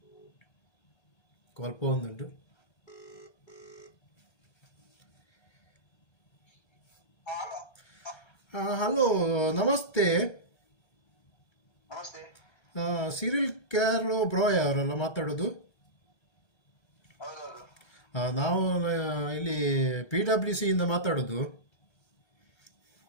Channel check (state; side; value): late; right; 1.3 ms